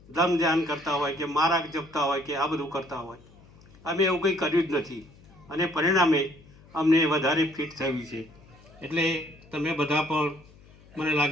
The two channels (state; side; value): noise; left; hum, 25 dB below the sound